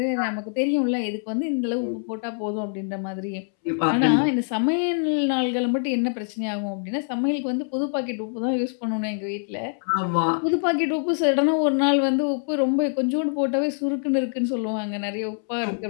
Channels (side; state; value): right; silent; 62 dB below the other